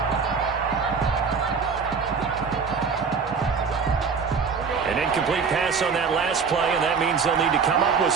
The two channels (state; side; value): quieter; left; 5.6 dB